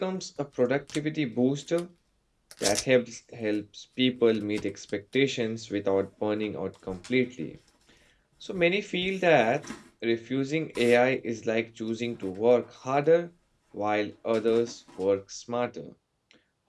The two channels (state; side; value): identical; both; correlation 1.00